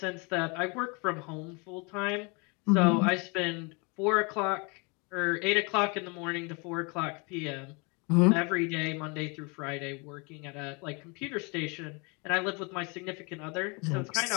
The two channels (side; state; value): right; quieter; 31.1 dB